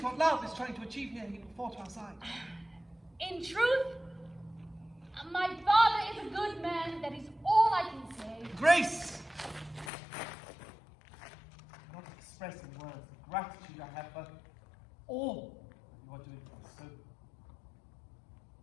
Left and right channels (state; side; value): drops out; right; at 9.9 s